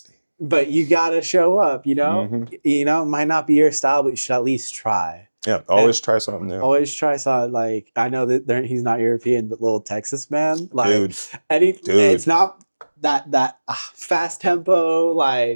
but you gotta show up, you know. Mhm. You know, it might not be your style, but you should at least try. Yeah, always try something new. Always try something. Like, I know that he's not European, but Little Texas Man, like, Dude, it's not that fast tempo,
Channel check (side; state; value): both; inverted; correlation -1.00